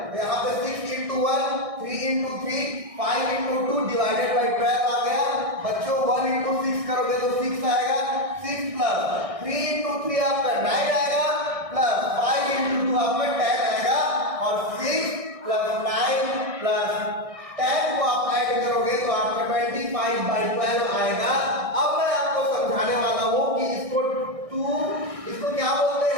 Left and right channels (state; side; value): late; left; 1.6 ms